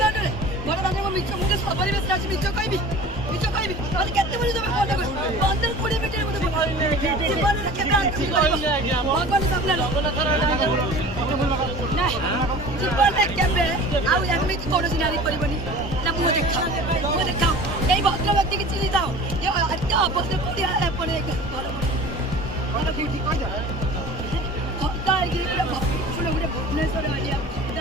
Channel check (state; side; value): normal; both; correlation 0.41